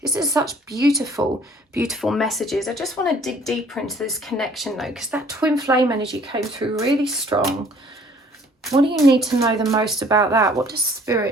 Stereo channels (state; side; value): normal; both; correlation 0.56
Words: This is such beautiful, beautiful messages. I just want to dig deeper into this connection though, because that twin flame energy came through really strong. What do you need to know the most about that? What does